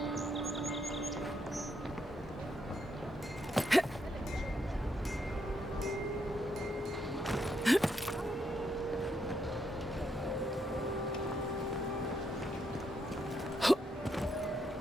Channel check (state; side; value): normal; both; correlation 0.77